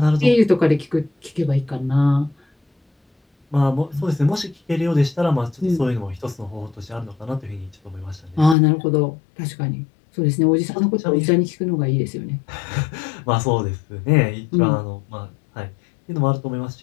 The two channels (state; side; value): drops out; right; at 8.6 s